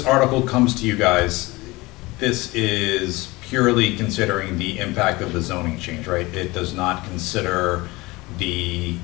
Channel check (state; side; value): quieter; right; 22.0 dB